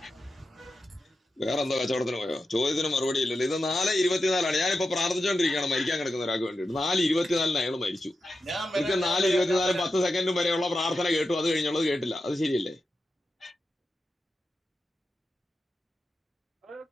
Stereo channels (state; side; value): normal; both; correlation 0.90